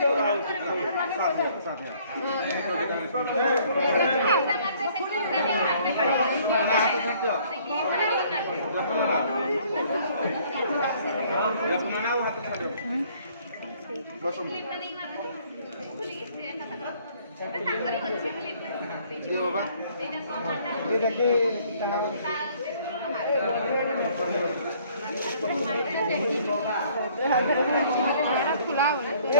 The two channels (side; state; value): both; inverted; correlation -0.60